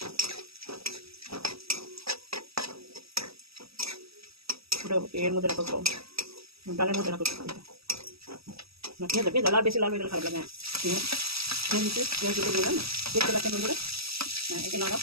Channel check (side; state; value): left; late; 0.76 ms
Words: এর মধ্যে রাখো, ডালের মধ্যে রাখো। পেঁয়াজ লাল, বেশি লাল হয়ে গেলে খারাপ লাগে। পেঁয়াজ দিলাম না, দেখতে পাচ্ছেন বন্ধুরা। হ্যাঁ, এটা নাড়াও।